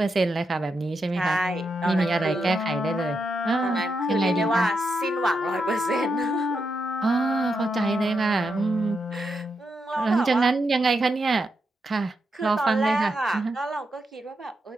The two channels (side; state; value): both; normal; correlation 0.84